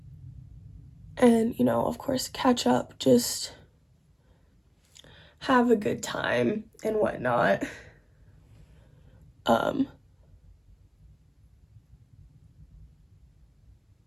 And, you know, of course, catch up, just have a good time and whatnot.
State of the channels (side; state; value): both; identical; correlation 1.00